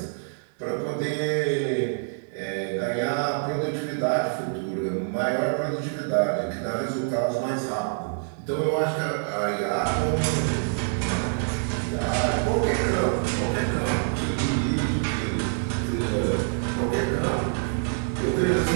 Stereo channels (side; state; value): left; silent; digital silence